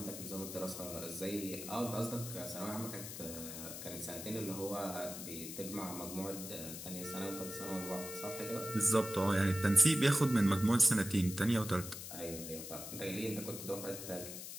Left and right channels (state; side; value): noise; left; hiss, 9 dB below the sound